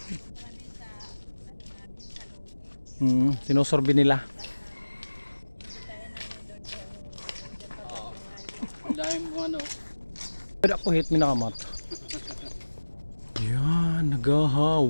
Sinusorbi nila. Dahil mo ano. Pwede ako hit minakamat. Yan,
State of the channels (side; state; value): both; inverted; correlation -1.00